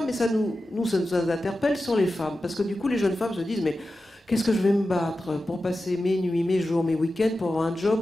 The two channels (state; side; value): normal; both; correlation 0.93